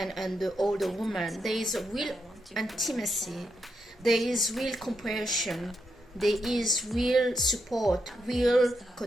and the older woman. There is a real intimacy, there is real comprehension, there is real support, real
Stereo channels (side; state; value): both; normal; correlation 0.82